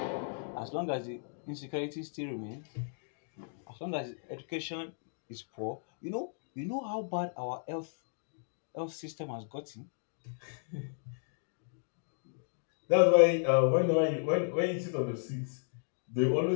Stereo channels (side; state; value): right; silent; digital silence